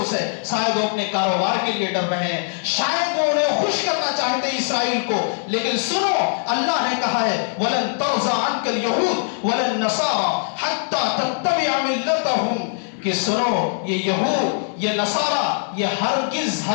ہے. شاید وہ اپنے کاروبار کے لیے ڈر رہے ہیں, شاید وہ انہیں خوش کرنا چاہتے ہیں اسرائیل کو. لیکن سنو, اللہ نے کہا ہے وَلَن تَرْضَىٰ عَنْكَ الْيَهُودُ وَلَا النَّصَارَىٰ حَتَّىٰ تَتَّبِعَ مِلَّتَهُمْ, کہ سنو یہ یہود یہ نصارہ یہ ہرگز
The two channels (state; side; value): silent; right; 65 dB below the other